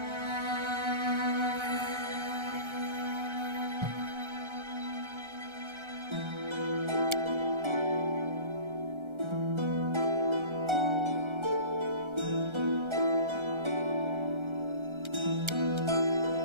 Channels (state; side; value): late; left; 1.3 ms